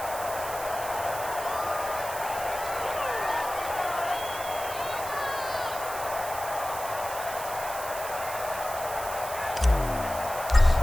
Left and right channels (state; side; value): noise; right; hiss, 10 dB below the sound